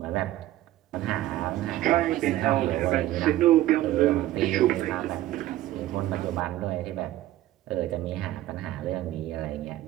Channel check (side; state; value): left; quieter; 14.8 dB